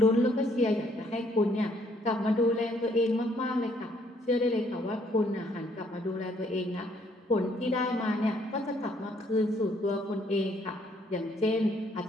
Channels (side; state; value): both; normal; correlation 0.67